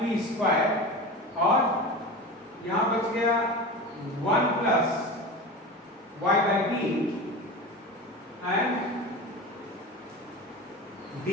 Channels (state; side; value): normal; both; correlation 0.29